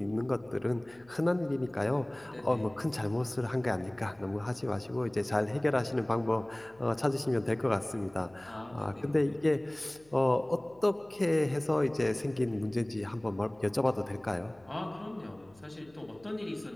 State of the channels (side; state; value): left; noise; hum, 29 dB below the sound